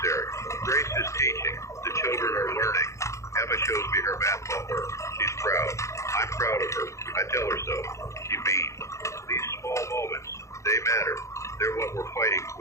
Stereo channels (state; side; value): late; right; 0.14 ms